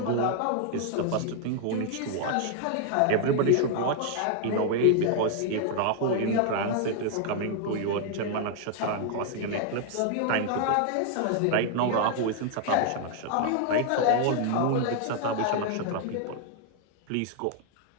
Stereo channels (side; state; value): both; different; correlation 0.00